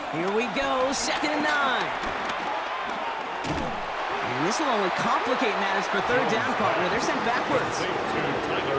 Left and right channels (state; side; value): identical; both; correlation 1.00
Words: Here we go, 2nd and 9. And this will only complicate matters for 3rd down, partner. They're sent backwards.